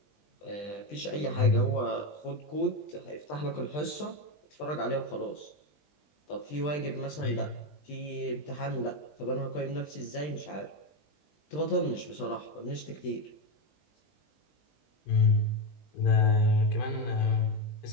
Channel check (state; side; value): late; right; 20 ms